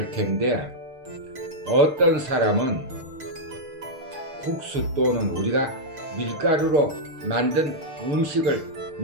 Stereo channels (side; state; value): left; late; 6.6 ms